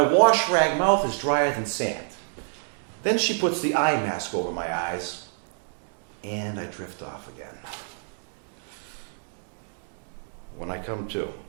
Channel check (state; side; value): silent; left; 60 dB below the other